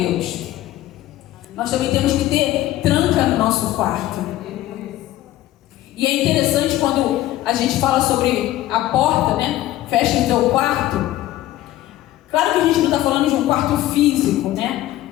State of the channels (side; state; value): right; quieter; 14.8 dB